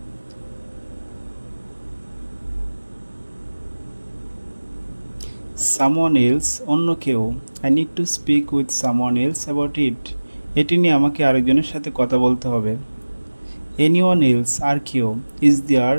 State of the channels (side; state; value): both; inverted; correlation -1.00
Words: Someone else অন্য কেউ I need to speak with someone else about it. এটি নিয়ে আমাকে আরেকজনের সাথে কথা বলতে হবে। Anyone else আর কেউ Is there